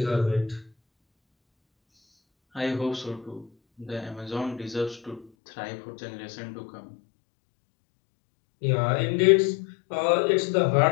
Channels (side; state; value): right; drops out; at 5.3 s